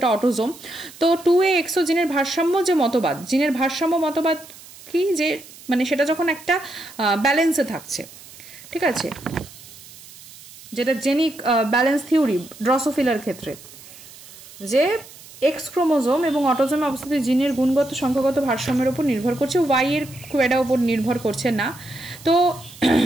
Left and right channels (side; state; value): right; noise; hiss, 19 dB below the sound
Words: অটোজোম। তো 2AXO জিনের ভারসাম্য যে মতবাদ, জিনের ভারসাম্য মতবাদ কি, যে মানে সেটা যখন একটা ব্যালেন্সে থাকছে, ঠিক আছে, যেটা জেনিক ব্যালেন্স থিওরি ড্রসোফিলার ক্ষেত্রে, যে এক্স ক্রোমোজোম এবং অটোজোমে অবস্থিত জিনের গুণগত সংখ্যাগত ভারসাম্যের উপর নির্ভর করছে, ওয়াই এর খুব একটা উপর নির্ভর করছে না। তো